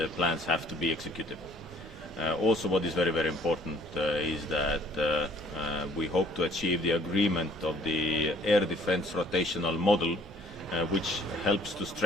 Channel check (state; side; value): normal; both; correlation 0.58